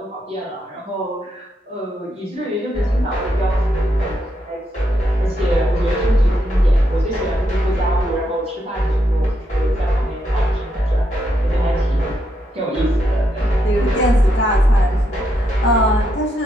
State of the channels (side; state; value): both; normal; correlation 0.80